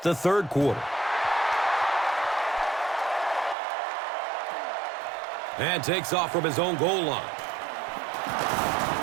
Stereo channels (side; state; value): left; drops out; at 3.6 s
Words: the third quarter. And takes off from his own goal line.